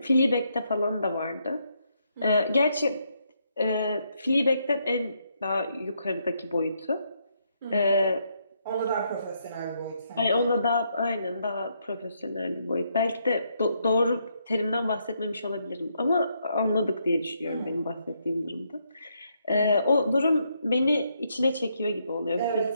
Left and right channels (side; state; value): both; inverted; correlation -0.76